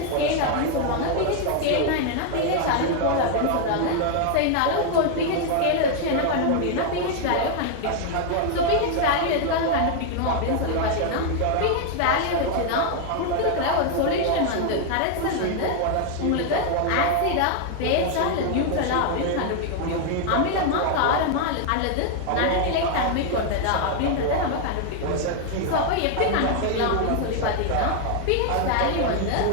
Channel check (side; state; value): both; different; correlation 0.00